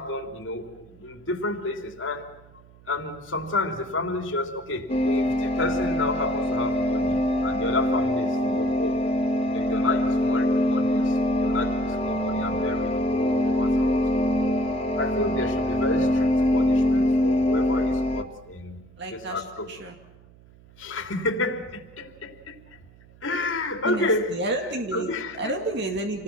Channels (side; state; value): right; noise; hum, 25 dB below the sound